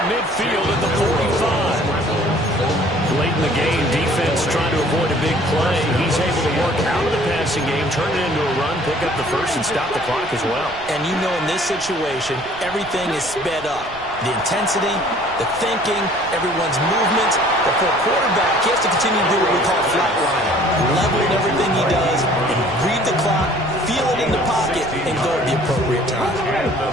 midfield at the 45. Late in the game, defense trying to avoid a big play. He's able to work out of the passing game, turn it into a run, pick up the first, and stop the clock as well. And you know in this situation, everything is sped up. The intensity, the thinking, everyone's movement. But for a quarterback, he has to continue to do what we call flatlining. Level in everything he does, and read the clock, feel it in the pocket, and go at the appropriate time.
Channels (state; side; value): noise; right; rumble, 20 dB below the sound